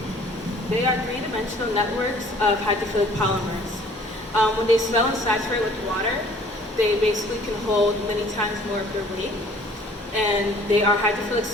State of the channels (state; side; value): normal; both; correlation 0.54